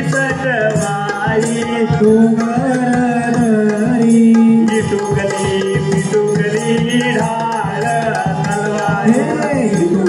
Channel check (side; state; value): both; identical; correlation 1.00